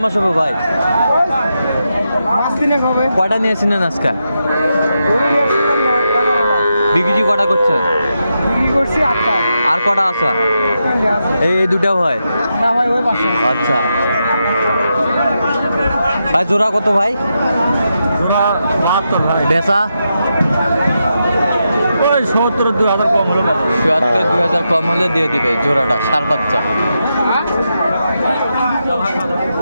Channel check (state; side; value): inverted; both; correlation -0.86